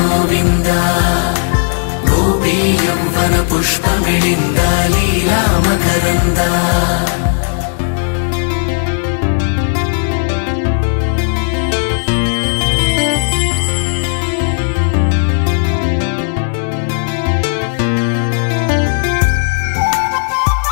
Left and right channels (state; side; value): silent; right; 64 dB below the other